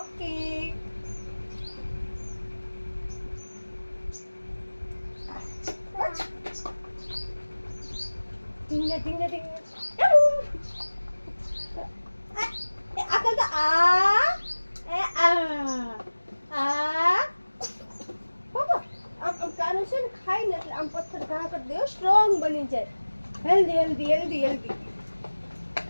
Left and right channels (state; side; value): inverted; both; correlation -1.00